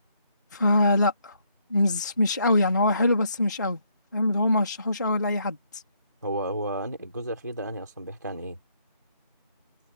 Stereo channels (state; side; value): inverted; both; correlation -0.72